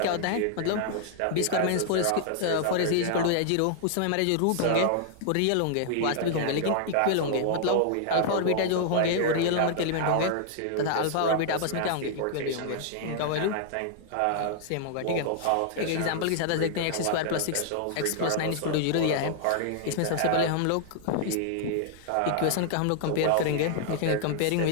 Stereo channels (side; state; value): both; different; correlation -0.01